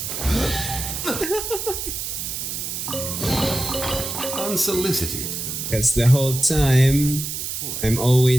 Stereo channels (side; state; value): right; noise; hiss, 5 dB below the sound